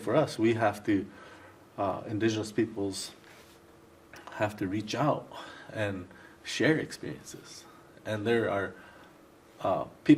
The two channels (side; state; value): both; identical; correlation 1.00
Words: us. We have to, indigenous peoples have to reach out and share experiences. And there are